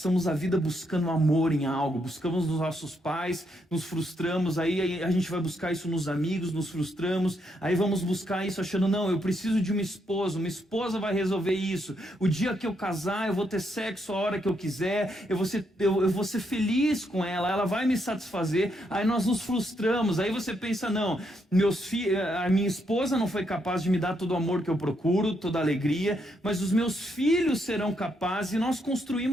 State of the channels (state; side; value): normal; both; correlation 0.77